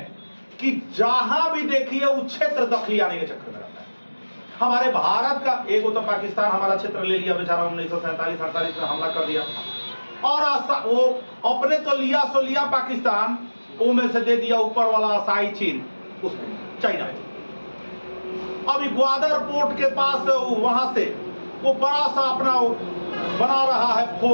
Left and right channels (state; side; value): inverted; both; correlation -1.00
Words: कि जहां भी देखिए वो क्षेत्र दखली आने के चक्कर में रहता है। हमारे भारत का एक तो पाकिस्तान हमारा क्षेत्र ले लिया बेचारा, 1947-48 में हमला कर दिया, और वो अपने तो लिया सो लिया पाकिस्तान, वो में से दे दिया ऊपर वाला असाई चीन, उसको चाइना। अभी ग्वादर पोर्ट के पास वहां से वो बड़ा सा अपना बना रहा है